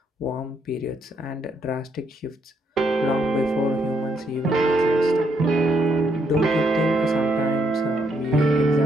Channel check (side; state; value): both; normal; correlation 0.74